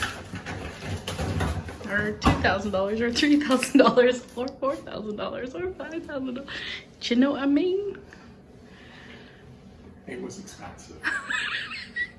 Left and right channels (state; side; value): identical; both; correlation 1.00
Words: or $2,000 or $3,000 or $4,000 or $5,000. Do you know what I mean? It was expensive.